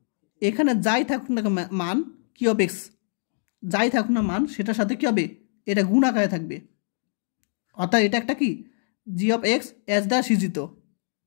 এখানে যাই থাকুক না মান, কিউ অফ এক্স যাই থাকুক না মান, সেটার সাথে কী হবে, এটা গুণ আকারে থাকবে, অর্থাৎ এটা একটা কি জি অফ এক্স এস দ্বারা সৃজিত,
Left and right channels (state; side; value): silent; right; digital silence